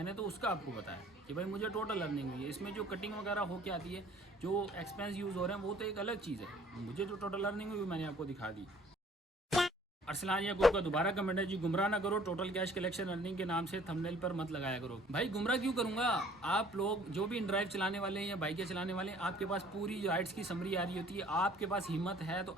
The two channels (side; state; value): both; normal; correlation 0.55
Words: तो उसका आपको बताया कि भाई मुझे टोटल अर्निंग हुई है। इसमें जो कटिंग वगैरह हो के आती है, जो एक्सपेंस यूज़ हो रहे हैं, वो तो एक अलग चीज़ है। मुझे जो टोटल अर्निंग हुई मैंने आपको दिखा दी। अरसलान याकूब का दोबारा कमेंट है जी गुमराह ना करो, टोटल कैश कलेक्शन अर्निंग के नाम से थंबनेल पर मत लगाया करो। भाई गुमराह क्यों करूंगा? आप लोग जो भी इन ड्राइव चलाने वाले हैं या बाइकें चलाने वाले हैं, आपके पास पूरी राइड्स की समरी आ रही होती है। आपके पास हिम्मत है तो